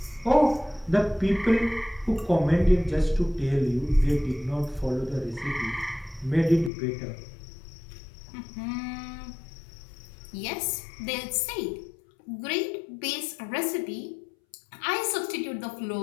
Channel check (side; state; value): right; drops out; at 6.7 s